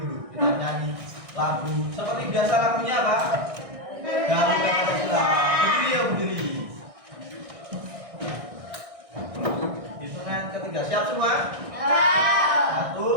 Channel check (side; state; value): left; late; 1.6 ms